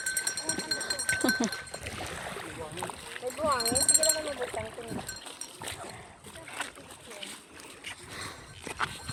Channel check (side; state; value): both; identical; correlation 1.00